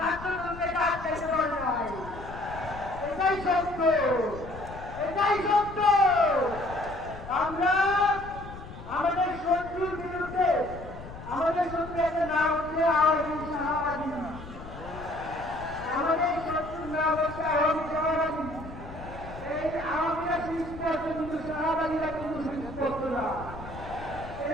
জনতাকে আটকাইতে পারে নাই। এটাই সত্য, এটাই সত্য। আমরা আমাদের শত্রুর বিরুদ্ধে, আমাদের শত্রু একটা নাম হচ্ছে আওয়ামী শাহবাদী, আমাদের শত্রুর নাম হচ্ছে আওয়ামী শাহবাদী। এই আওয়ামীরা সৃষ্টি হচ্ছে, কিন্তু শাহবাদীরা কিন্তু সৃষ্টি করতো না।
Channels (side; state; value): left; noise; rumble, 13 dB below the sound